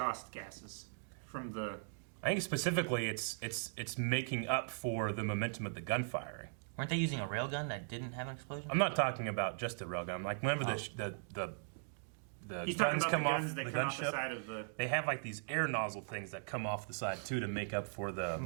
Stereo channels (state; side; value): silent; left; digital silence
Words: gases from the. I think specifically it's making up for the momentum of the gunfiring. Weren't they using a railgun that didn't have an explosion? I'm not talking about just the railgun. Like whenever the guns come off the gunship, they have like these air nozzle things that come off the side too to make up for the